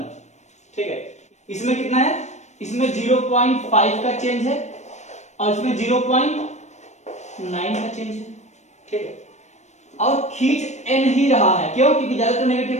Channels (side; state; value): right; late; 0.34 ms